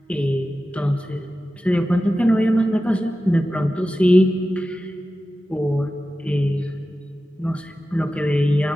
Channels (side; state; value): both; normal; correlation 0.94